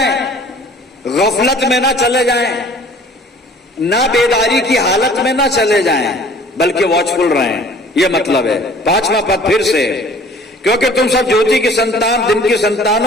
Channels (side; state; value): both; normal; correlation 0.51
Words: गफलत में ना चले जाएं, ना बेदारी की हालत में ना चले जाएं, बल्कि वॉचफुल रहें। यह मतलब है। 5वां पद फिर से, क्योंकि तुम सब ज्योति की संतान, दिन की संतान